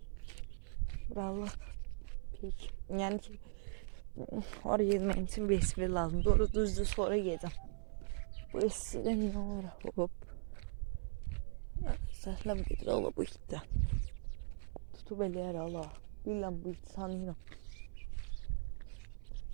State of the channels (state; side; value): silent; left; 51 dB below the other